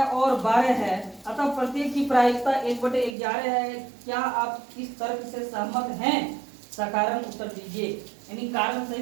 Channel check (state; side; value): drops out; left; at 3.2 s